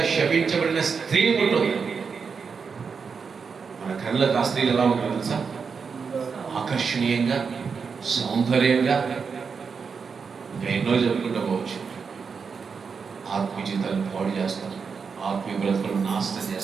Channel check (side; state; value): left; quieter; 5.6 dB